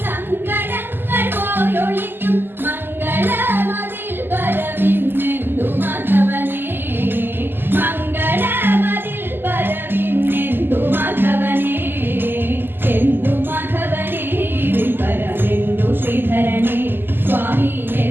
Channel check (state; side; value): late; left; 0.097 ms